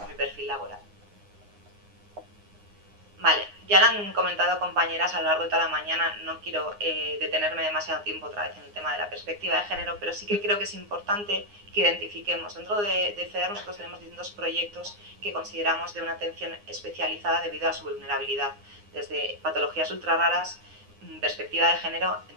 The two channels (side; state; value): left; late; 9.7 ms